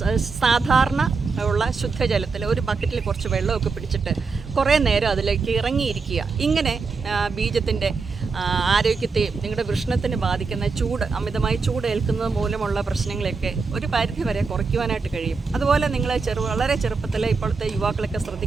സാധാരണ ഉള്ള ശുദ്ധജലത്തിൽ ഒരു ബക്കറ്റിൽ കുറച്ച് വെള്ളമൊക്കെ പിടിച്ചിട്ട് കുറേ നേരം അതിലേക്ക് ഇറങ്ങിയിരിക്കുക. ഇങ്ങനെ ബീജത്തിൻ്റെ ആരോഗ്യത്തെയും നിങ്ങളുടെ വൃഷ്ണത്തിന് ബാധിക്കുന്ന അമിതമായി ചൂട് ഏൽക്കുന്നത് മൂലമുള്ള പ്രശ്നങ്ങളൊക്കെ ഒരു പരിധി വരെ കുറയ്ക്കുവാനായിട്ട് കഴിയും. അതുപോലെ നിങ്ങൾ വളരെ ചെറുപ്പത്തിൽ ഇപ്പോഴത്തെ യുവാക്കളൊക്കെ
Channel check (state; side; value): quieter; left; 4.6 dB